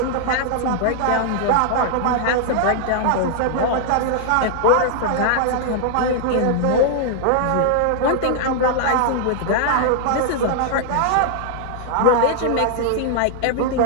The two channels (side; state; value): both; different; correlation -0.01